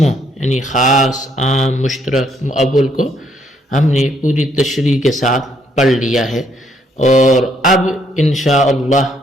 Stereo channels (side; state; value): both; normal; correlation 0.70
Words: یعنی خاص، عام، مشترک، مؤول کو ہم نے پوری تشریح کے ساتھ پڑھ لیا ہے، اور اب انشاءاللہ